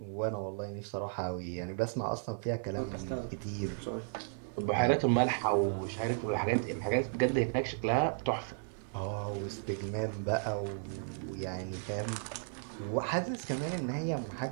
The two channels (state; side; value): silent; left; 55 dB below the other